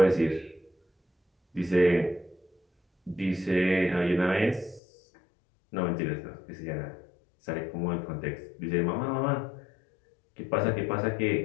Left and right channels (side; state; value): right; drops out; at 4.8 s